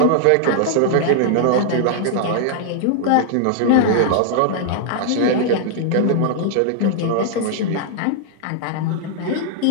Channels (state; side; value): different; both; correlation -0.01